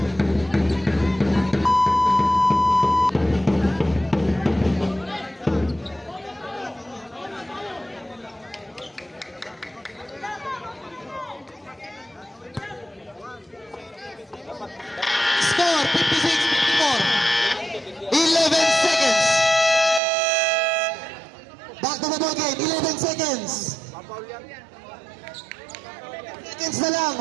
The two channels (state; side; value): drops out; left; at 20.0 s